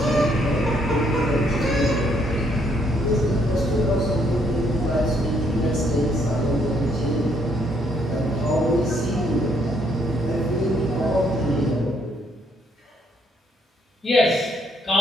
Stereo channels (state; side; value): normal; both; correlation 0.70